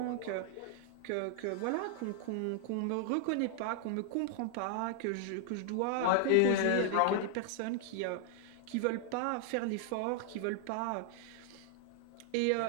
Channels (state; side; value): different; both; correlation 0.00